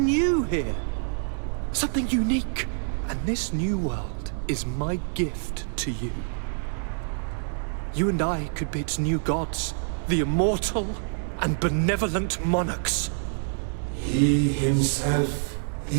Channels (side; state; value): left; silent; digital silence